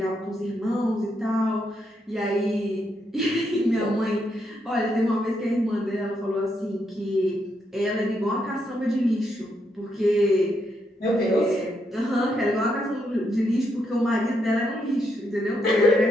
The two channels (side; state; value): both; normal; correlation 0.79